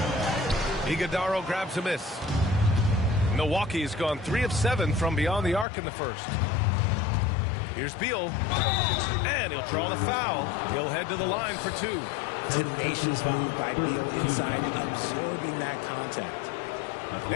Iguodala grabs a miss. Milwaukee's gone 3 of 7 from beyond the arc in the first. Here's Beal. And he'll draw the foul. He'll head to the line for 2. Tenacious move by Beal inside, absorbing that contact.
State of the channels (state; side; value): drops out; right; at 5.7 s